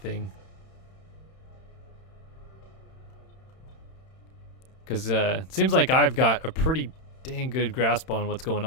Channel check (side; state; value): right; late; 31 ms